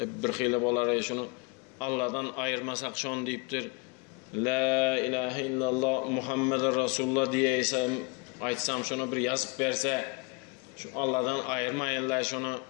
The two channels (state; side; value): quieter; right; 30.2 dB